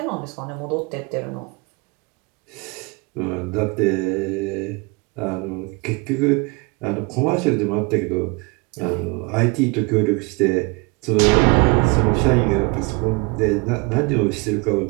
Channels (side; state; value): left; quieter; 28.4 dB